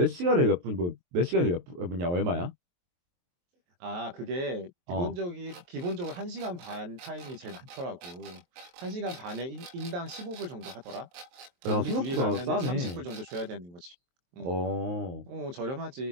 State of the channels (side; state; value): left; late; 23 ms